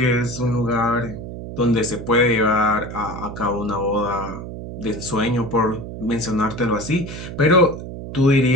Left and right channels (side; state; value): right; noise; hum, 9 dB below the sound